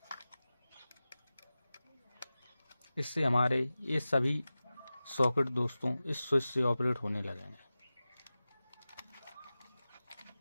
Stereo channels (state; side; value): inverted; both; correlation -0.96